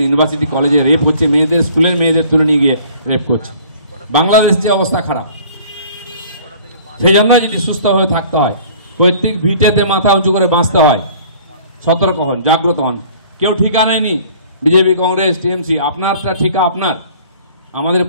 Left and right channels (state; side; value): inverted; both; correlation -0.51